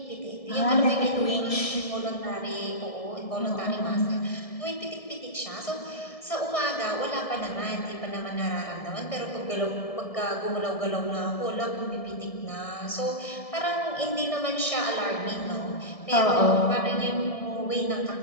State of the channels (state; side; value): late; right; 1.6 ms